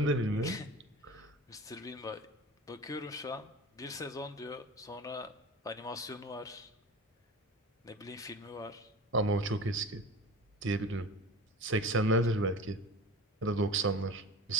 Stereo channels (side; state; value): both; normal; correlation 0.36